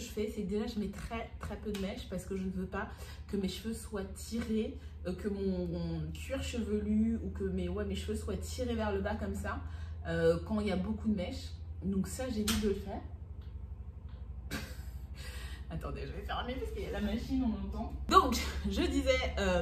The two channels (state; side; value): identical; both; correlation 1.00